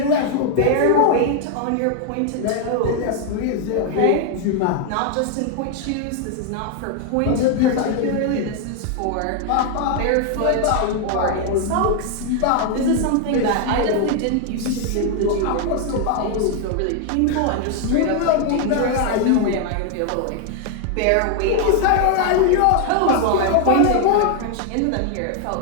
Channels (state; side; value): different; both; correlation 0.00